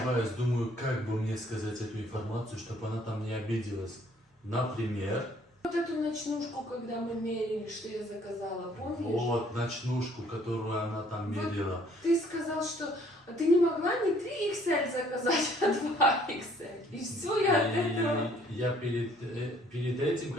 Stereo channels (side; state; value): both; normal; correlation 0.61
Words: думаю, как бы мне сказать эту информацию, чтобы она там не обиделась. Например... Вот эту ночнушку, когда мы мерили, что я заказала, помнишь? Вот, ночнушку, которую она там мерила. Вот ты сказал, что ты не могла не 3XL заказать, а 2XL. И все, я от этого... Я перед этим,